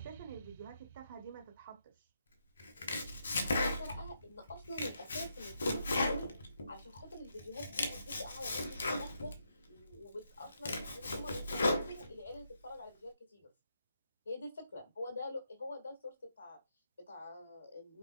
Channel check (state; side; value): inverted; both; correlation -0.80